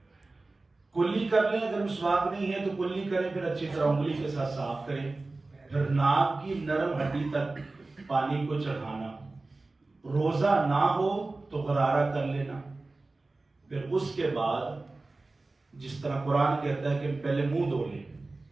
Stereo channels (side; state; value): left; quieter; 3.3 dB